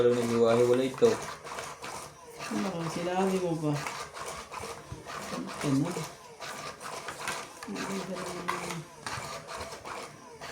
naghiwa-hiwala ito. Ano ka, sinabi mo ba? Ano?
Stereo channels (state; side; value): identical; both; correlation 1.00